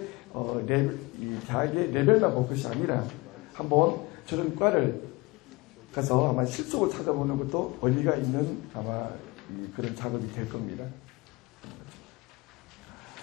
레벨만 볼 것이 아니라 한번 저런 과를 가서 아마 실속을 찾아보는 것도 의미가 있는 아마 그런 작업이 될 겁니다.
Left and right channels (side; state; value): right; quieter; 23.4 dB